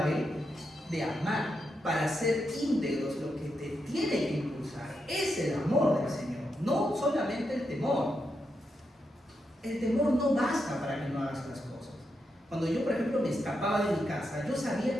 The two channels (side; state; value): both; normal; correlation 0.84